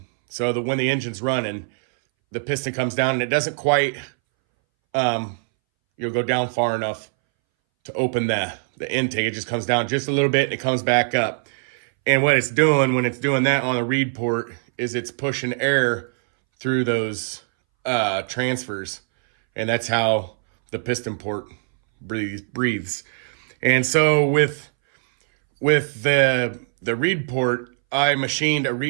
that when the engine's running, the piston comes down and it doesn't quite, go down far enough to open the intake. It just comes down just a little bit and it comes back up. And what it's doing when it's doing that on the reed port is it's pushing air through those transfers. And that's how the piston port breathes. And so with the reed port, I machined a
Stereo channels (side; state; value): left; silent; 62 dB below the other